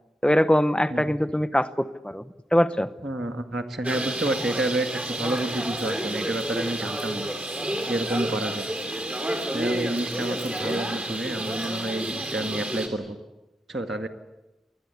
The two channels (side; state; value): both; normal; correlation 0.83